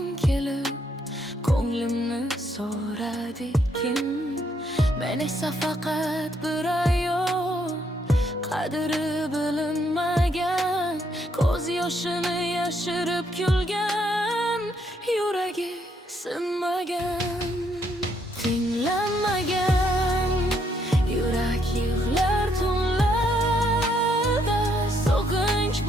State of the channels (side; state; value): both; normal; correlation 0.73